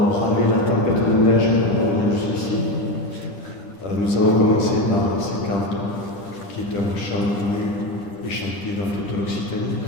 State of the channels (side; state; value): right; late; 10 ms